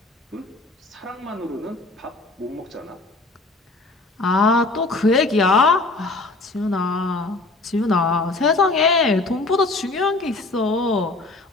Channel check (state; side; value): quieter; right; 3.2 dB